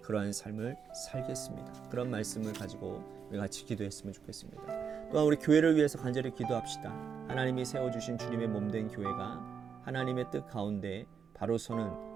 그러한 삶을 살겠습니다. 그런 말씀을 가지고 우리 같이 기도했으면 좋겠습니다. 또 또한 우리 교회를 위해서 간절히 기도합시다. 하나님이 세워주신 주님의 몸된 교회가 하나님의 뜻 가운데 바로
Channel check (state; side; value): quieter; left; 6.8 dB